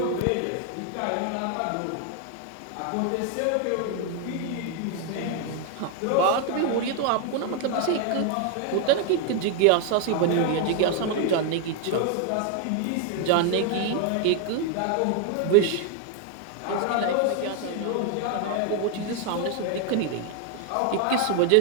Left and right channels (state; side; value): different; both; correlation 0.00